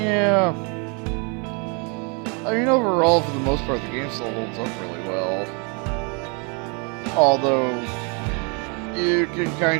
Yeah. I mean, overall, for the most part, the game still holds up really well. Although, you can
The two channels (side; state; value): left; quieter; 34.4 dB